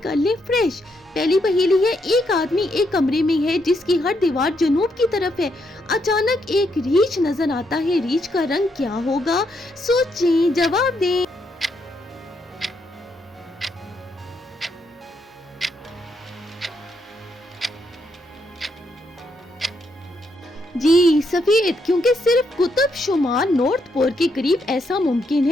कर ले फ्रेश। पहली पहेली है, एक आदमी एक कमरे में है जिसकी हर दीवार जनूब की तरफ है। अचानक एक रीछ नजर आता है, रीछ का रंग क्या होगा? सोचें, जवाब दें। जी सफेद, क्योंकि सिर्फ कुतुब शुमार नॉर्थ पोल के करीब ऐसा मुमकिन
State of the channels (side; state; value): both; normal; correlation 0.77